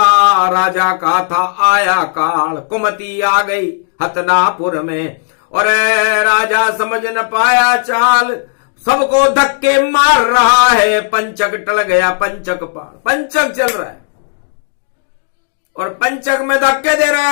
राजा का था आया काल, कुमति आ गई हतनापुर में, और राजा समझ न पाया चाल। सबको धक्के मार रहा है। पंचक टल गया, पंचक पार, पंचक चल रहा है और पंचक में धक्के दे रहा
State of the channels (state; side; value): silent; right; digital silence